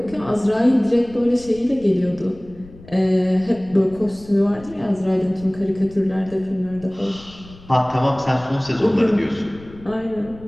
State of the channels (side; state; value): left; noise; rumble, 20 dB below the sound